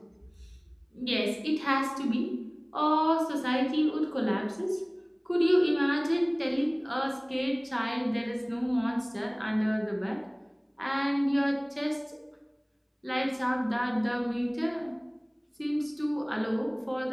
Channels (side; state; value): both; identical; correlation 1.00